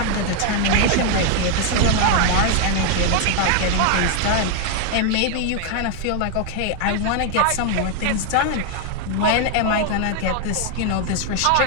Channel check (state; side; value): different; both; correlation 0.01